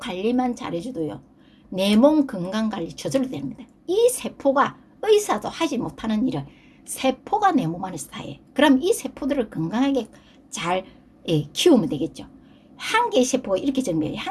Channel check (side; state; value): both; identical; correlation 1.00